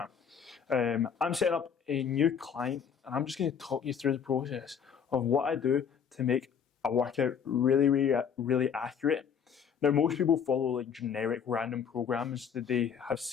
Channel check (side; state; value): right; quieter; 7.3 dB